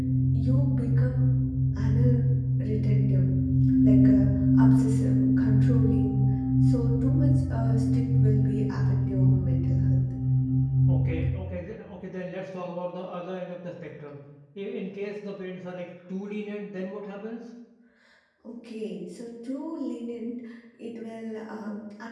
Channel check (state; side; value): identical; both; correlation 1.00